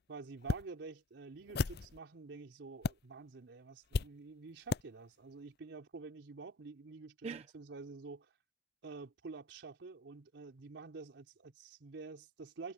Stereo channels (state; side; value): normal; both; correlation 0.51